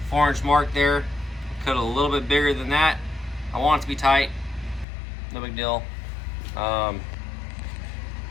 4-inch mark there, cut it a little bit bigger than that. I want it to be tight, no big deal. And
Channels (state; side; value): drops out; right; at 4.9 s